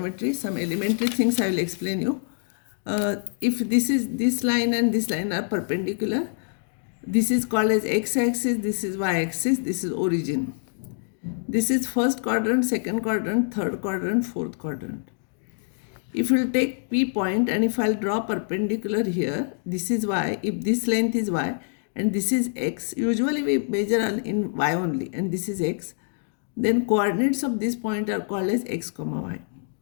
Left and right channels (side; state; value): right; silent; digital silence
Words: Some elementary things I will explain you. If this line and this line are perpendicular, this is called as x-axis, this is y-axis, this is origin. This is first quadrant, second quadrant, third quadrant, fourth quadrant. If you will take P point and if I'll draw perpendicular here, this is y, if this length is y and this is x, usually we measure in y only and this is x, then coordinates of this point are called as x comma y.